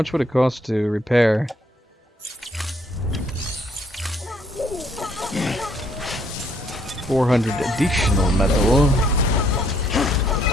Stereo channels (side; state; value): both; normal; correlation 0.67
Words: would it cost to repair? $400 additional metal.